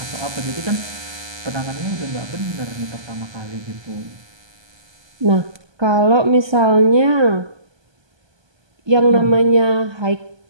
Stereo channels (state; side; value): late; left; 1.2 ms